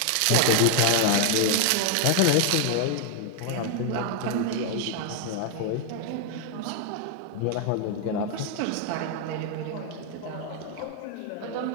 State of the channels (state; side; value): different; both; correlation 0.00